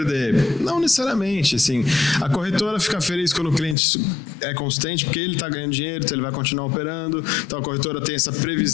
Não necessariamente, assim. A corretora fica feliz quando o cliente é consistente, porque ele está ganhando dinheiro, então ele vai continuar operando. Então a corretora tem essa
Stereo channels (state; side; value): drops out; right; at 3.8 s